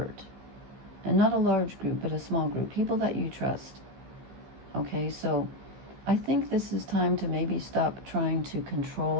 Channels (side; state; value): left; late; 15 ms